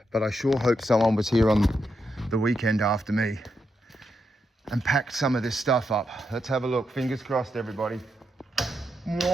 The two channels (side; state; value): both; normal; correlation 0.83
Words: but I sure hope someone was here on the weekend after me and packed some of this stuff up. Let's have a look. Fingers crossed, everybody.